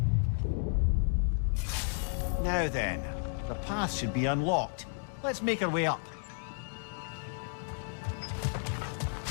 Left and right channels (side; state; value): right; silent; 56 dB below the other